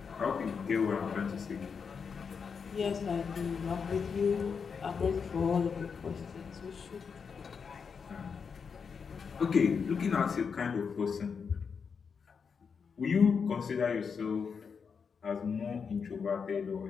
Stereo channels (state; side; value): quieter; right; 6.0 dB